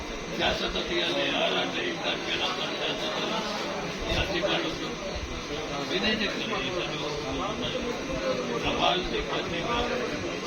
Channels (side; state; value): both; identical; correlation 1.00